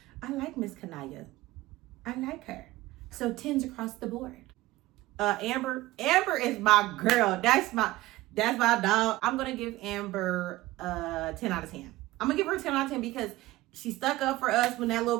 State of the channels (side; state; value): left; quieter; 18.0 dB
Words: I like Miss Kanaya. I like her. So 10s across the board. Amber is my girl. That's my dog. I'm gonna give Amber 10 out of 10. I'm gonna give her 10 out of 10 because she stuck up for us when that